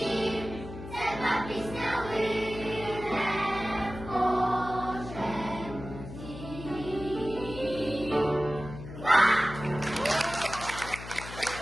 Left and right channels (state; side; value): noise; left; hum, 11 dB below the sound